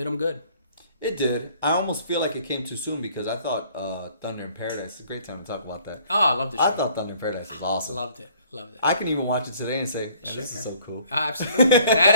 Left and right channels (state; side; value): inverted; both; correlation -0.58